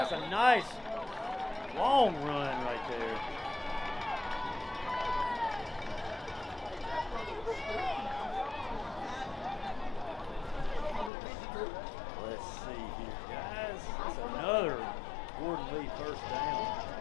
that's a nice long run right there. Let's see here, guys. That's another Gordon Lee first down.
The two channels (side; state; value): right; drops out; at 11.1 s